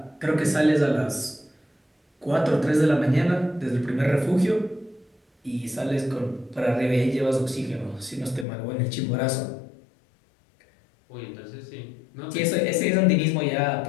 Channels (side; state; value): right; drops out; at 8.5 s